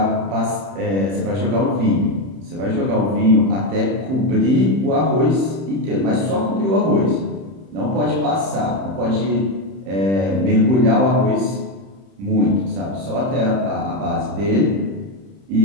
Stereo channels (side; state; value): left; late; 31 ms